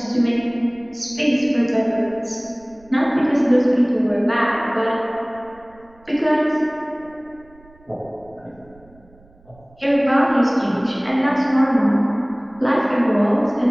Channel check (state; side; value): noise; right; rumble, 28 dB below the sound